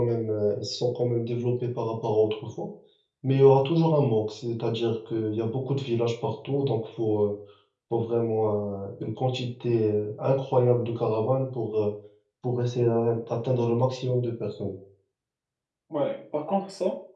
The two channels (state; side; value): identical; both; correlation 1.00